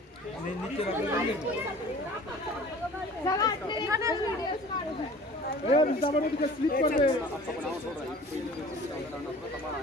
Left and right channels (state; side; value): normal; both; correlation 0.46